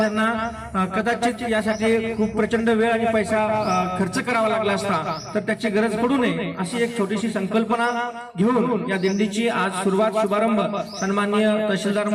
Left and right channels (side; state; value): both; identical; correlation 1.00